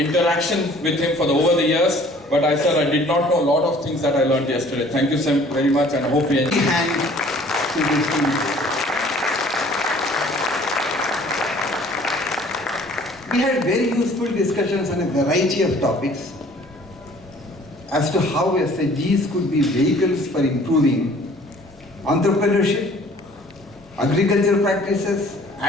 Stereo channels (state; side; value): normal; both; correlation 0.53